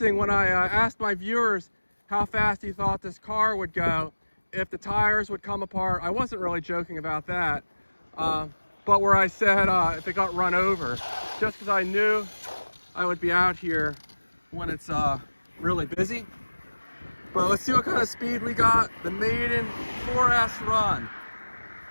when I asked my viewers how fast he thought this car would go, if the tires would come apart. I wasn't really joking about that. But where I said if it got run over, just because I knew I would be out here when it's really busy. But let's see what kind of speed we got. The Maiden 4S run.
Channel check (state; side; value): inverted; both; correlation -1.00